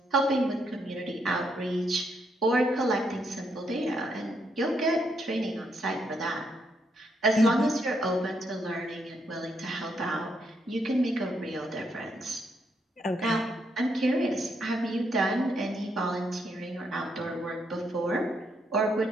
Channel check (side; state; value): both; normal; correlation 0.77